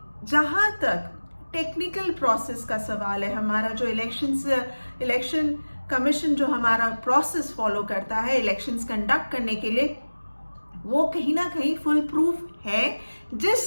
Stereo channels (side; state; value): both; inverted; correlation -1.00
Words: जहां तक टेक्निकल प्रोसेस का सवाल है, हमारा जो इलेक्शन कमीशन जो हमारा प्रोसेस फॉलो करता है इलेक्शंस कंडक्ट करने के लिए, वो कहीं ना कहीं फुल प्रूफ है,